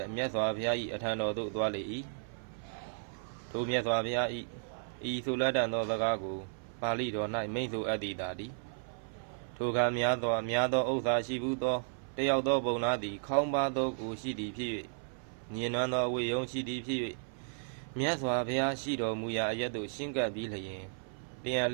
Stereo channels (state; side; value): silent; left; 55 dB below the other